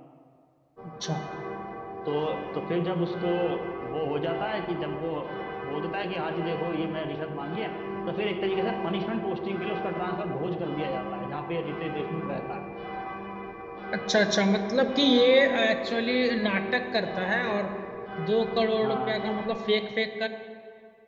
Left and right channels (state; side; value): identical; both; correlation 1.00